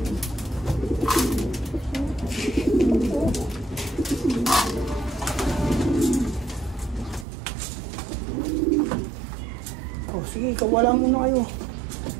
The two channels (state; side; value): drops out; left; at 7.2 s